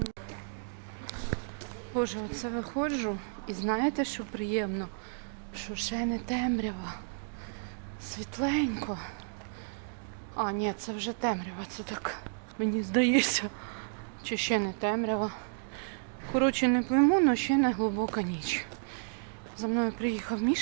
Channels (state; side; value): silent; left; digital silence